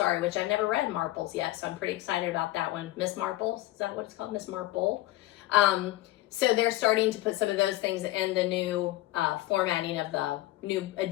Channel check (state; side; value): quieter; right; 17.1 dB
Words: which I've never read Marples yet, so I'm pretty excited about that one. Miss Marples, is that what it's called? Miss Marple. So they're starting to put some of those things in the new formatting of the new